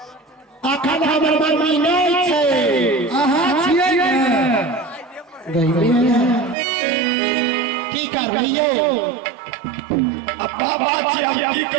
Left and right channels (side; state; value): left; drops out; at 6.6 s